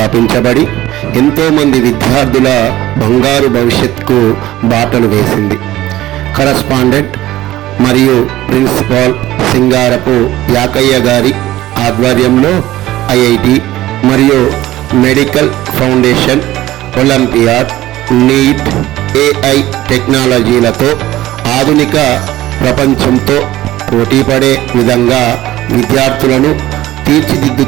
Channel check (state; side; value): quieter; left; 15.7 dB